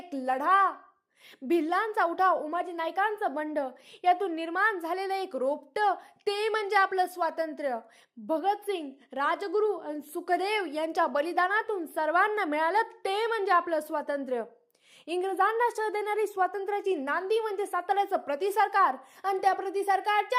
लढा। भिल्लांचा उठाव, उमाजी नायकांचं बंड, यातून निर्माण झालेलं एक रोपटं ते म्हणजे आपलं स्वातंत्र्य। भगतसिंग, राजगुरू आणि सुखदेव यांच्या बलिदानातून सर्वांना मिळालं ते म्हणजे आपलं स्वातंत्र्य। इंग्रजांना शह देणारी स्वातंत्र्याची नांदी म्हणजे साताऱ्याचं प्रतिसरकार आणि त्या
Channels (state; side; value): identical; both; correlation 1.00